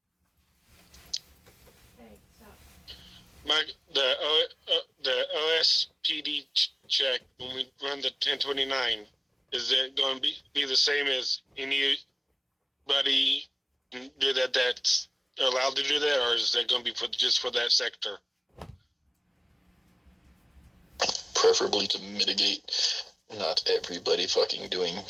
The OSPD check when we run the 1029, is it going to be the same as anybody do that's allowed to do that, or is that going to be just for that sector? Preferably to mitigate not everybody fucking doing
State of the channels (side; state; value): both; identical; correlation 1.00